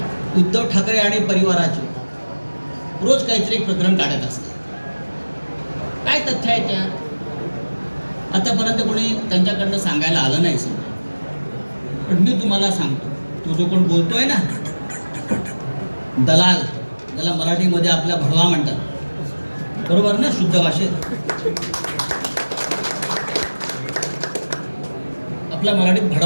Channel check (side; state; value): both; inverted; correlation -1.00